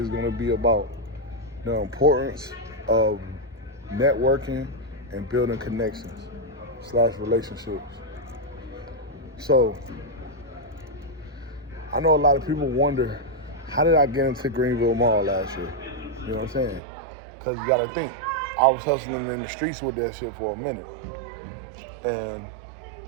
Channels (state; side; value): drops out; left; at 16.8 s